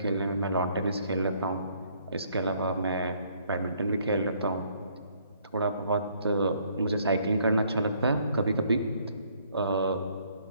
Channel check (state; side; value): inverted; both; correlation -0.65